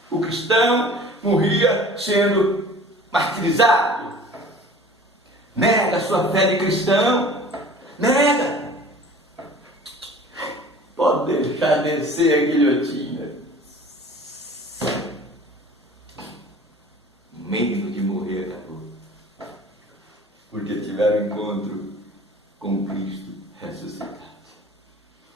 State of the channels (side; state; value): both; normal; correlation 0.45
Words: O cristão morria sendo martirizado. Nega a sua fé de cristão, nega. Pode deixar descer a guilhotina. Medo de morrer acabou, porque tiveram encontro com Cristo ressuscitado.